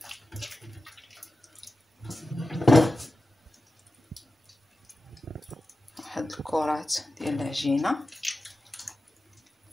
واحد الكرات ديال العجينه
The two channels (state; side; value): normal; both; correlation 0.93